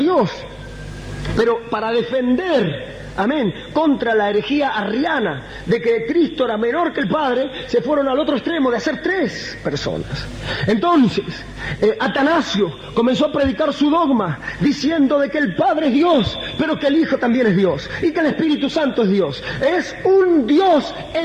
Pero para defender, amén, contra la herejía arriana de que Cristo era menor que el Padre, se fueron al otro extremo de hacer 3 personas. Entonces, Atanasio comenzó a predicar su dogma, diciendo de que el Padre es Dios, pero que el Hijo también es Dios, y que el Espíritu Santo es Dios. Es un Dios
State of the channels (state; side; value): identical; both; correlation 1.00